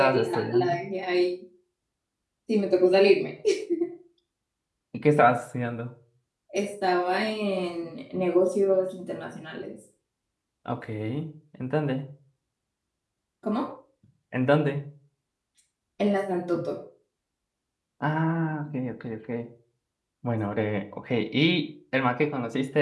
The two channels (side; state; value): both; identical; correlation 1.00